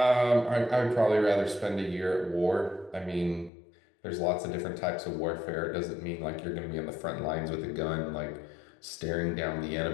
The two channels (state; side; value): drops out; right; at 3.5 s